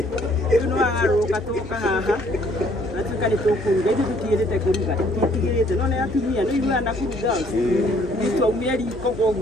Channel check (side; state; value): both; normal; correlation 0.63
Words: no agaruka toka haha atuka ni tokuruga ithu tutirete kuruga tutigirite no ne atumia no iru ana kuruga itu aumeri